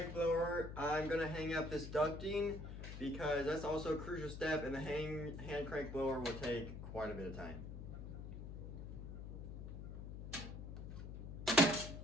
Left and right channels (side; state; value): left; noise; hum, 8 dB below the sound